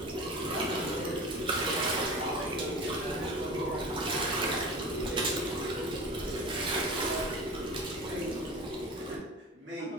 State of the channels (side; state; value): both; normal; correlation 0.33